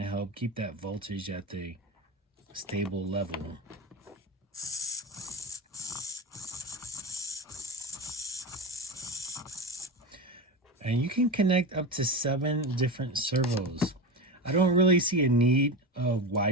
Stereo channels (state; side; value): normal; both; correlation 0.21